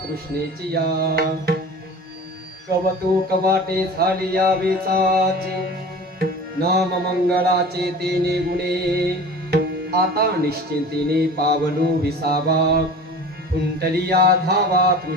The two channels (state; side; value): normal; both; correlation 0.39